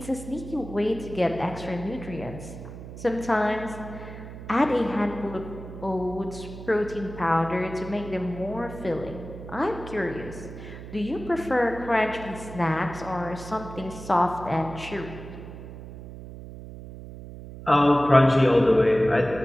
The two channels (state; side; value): noise; right; hum, 13 dB below the sound